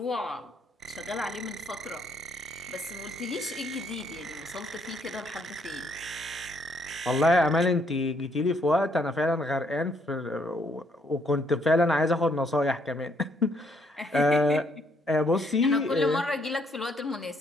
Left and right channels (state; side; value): normal; both; correlation 0.70